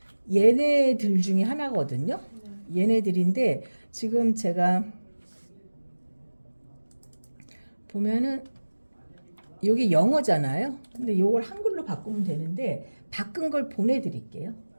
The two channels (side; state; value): both; inverted; correlation -1.00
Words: 얘네들 중에 하나거든요. 네. 얘네들인데 지금 제가 보면은 여기 영어잖아요. 근데 요걸 한글로 바꾸면 되는데 바꾼 걸 보내드릴게요.